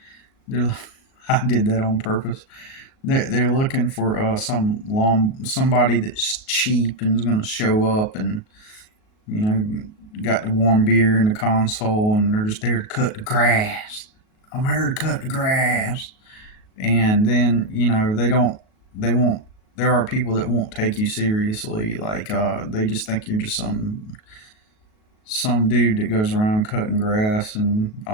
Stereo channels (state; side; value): late; right; 37 ms